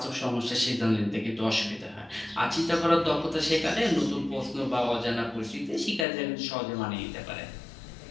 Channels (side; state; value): right; drops out; at 6.1 s